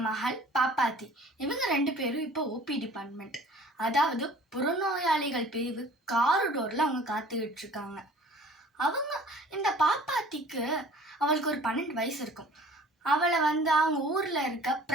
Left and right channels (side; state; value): both; normal; correlation 0.49